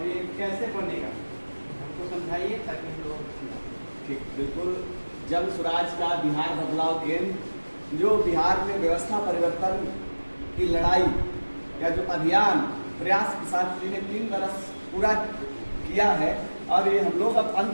ये कैसे बनेगा हमको समझाइए ताकि हम लोग समझाएं। ठीक, बिल्कुल। जन स्वराज का बिहार बदलाव केंद्र जो बिहार में व्यवस्था परिवर्तन की लड़ाई या जो अभियान प्रयास किसान जी ने 3 बरस पूरा किया है और ये हम लोग अब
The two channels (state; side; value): inverted; both; correlation -1.00